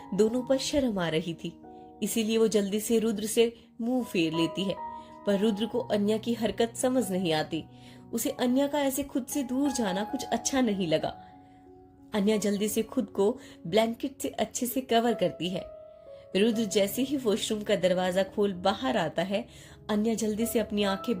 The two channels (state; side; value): identical; both; correlation 1.00